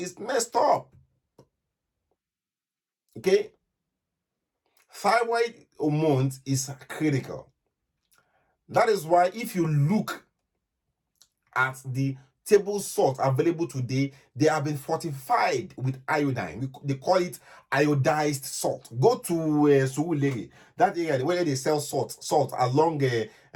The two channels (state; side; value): identical; both; correlation 1.00